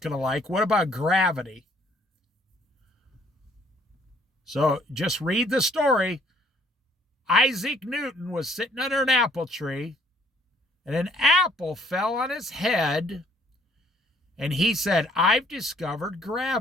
to like. What about gravity? So just read the story. Isaac Newton was sitting under an apple tree, and an apple fell on his head, and he said, "I've discovered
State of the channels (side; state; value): both; normal; correlation 0.62